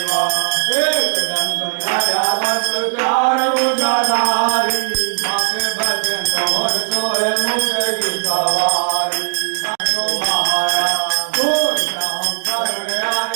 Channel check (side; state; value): left; silent; digital silence